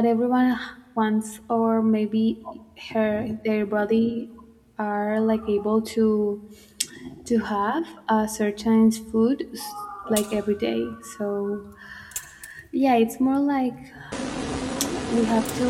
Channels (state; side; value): identical; both; correlation 1.00